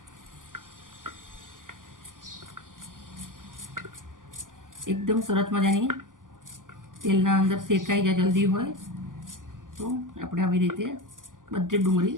એકદમ સરસ મજાની તેલના અંદર શેકાઈ જાય જલ્દી હોય તો આપણે આવી રીતે બધી ડુંગળી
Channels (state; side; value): late; left; 0.88 ms